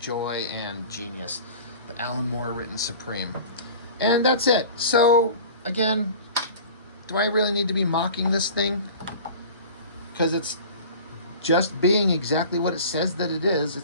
and genius, the Alan Moore written Supreme. And that's it. So, again... do I really need to be mocking this thing? Because it's just being exactly what it says that it is.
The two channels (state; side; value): inverted; both; correlation -0.40